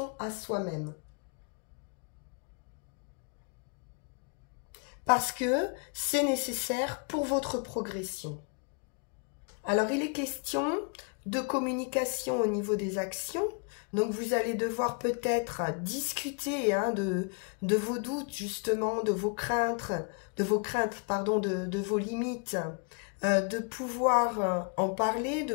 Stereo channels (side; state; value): right; quieter; 37.2 dB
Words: à soi-même. Parce que c'est nécessaire pour votre progression. Alors, il est question de communication au niveau des actions. Donc, vous allez devoir peut-être discuter hein, de vos doutes, justement, de vos craintes, de vos limites, de pouvoir en parler, de